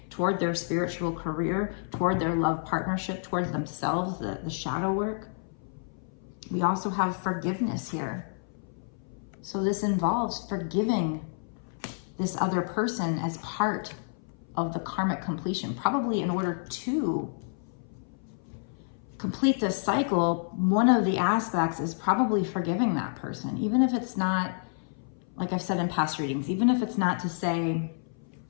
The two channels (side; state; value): right; silent; 57 dB below the other